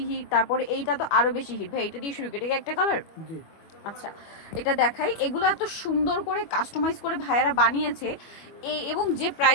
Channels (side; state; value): right; late; 25 ms